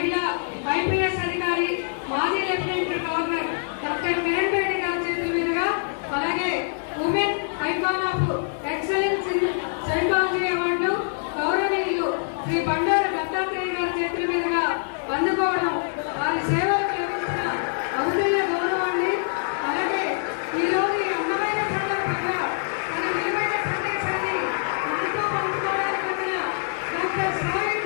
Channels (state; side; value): silent; right; digital silence